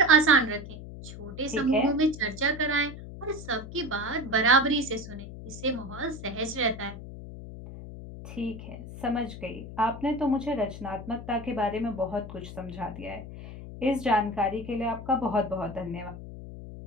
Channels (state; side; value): noise; left; hum, 12 dB below the sound